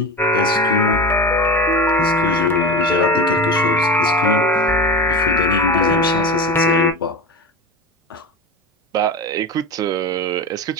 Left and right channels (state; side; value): normal; both; correlation 0.25